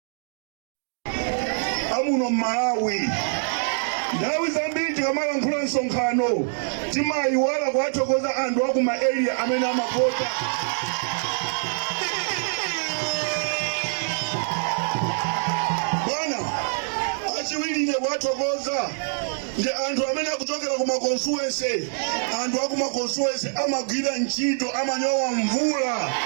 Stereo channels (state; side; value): silent; left; digital silence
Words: Amuno Malawi. Ndawi zambiri tikamala nkhula nsonkhano timayiwala kuwathokoza anthu aku ma area amene amavota. Bwana achiwirire kuwathokoza ndi anthu amene akuchokera ku ma constituency. Anthu aku ma constituency amagwira ntchito, amanyowa mvula